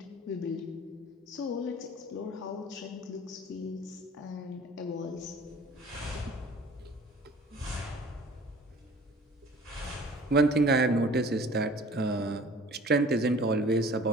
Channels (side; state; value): both; normal; correlation 0.48